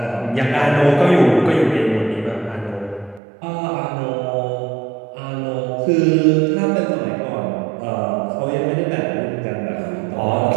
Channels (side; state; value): left; drops out; at 3.2 s